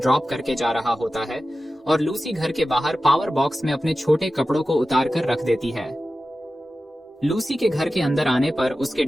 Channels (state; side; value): normal; both; correlation 0.94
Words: करके जा रहा होता है और लूसी घर के बाहर पावर बॉक्स में अपने छोटे कपड़ों को उतार कर रख देती है। लूसी के घर के अंदर आने पर उसके